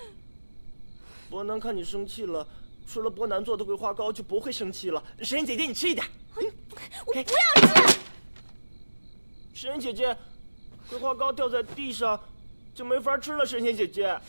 伯南看你生气了，吃了伯南做的桂花糕就不会生气了。神仙姐姐，你吃一点。我不要吃。神仙姐姐，桂花糕掉在地上就没法吃了。神仙姐姐，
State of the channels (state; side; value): inverted; both; correlation -1.00